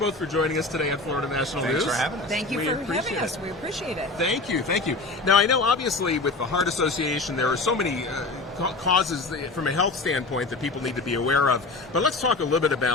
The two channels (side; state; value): right; quieter; 3.2 dB